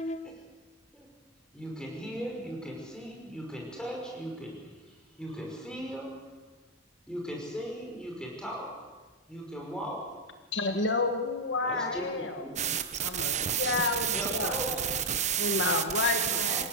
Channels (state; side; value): normal; both; correlation 0.02